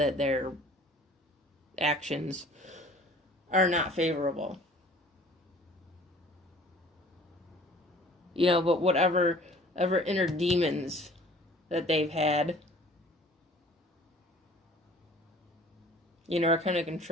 their actions are not favorable. You know, but whatever inner demons that they've had, you know, are kind of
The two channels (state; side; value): normal; both; correlation 0.50